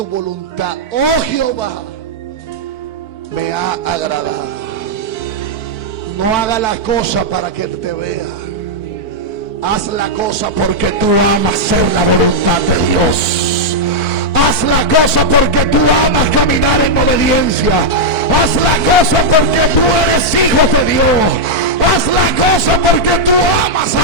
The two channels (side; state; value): right; late; 4.5 ms